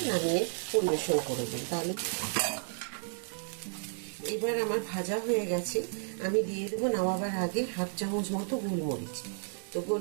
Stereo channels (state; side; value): silent; left; digital silence